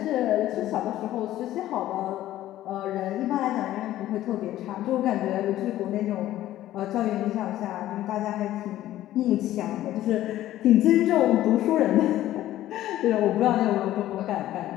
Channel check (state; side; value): quieter; right; 13.9 dB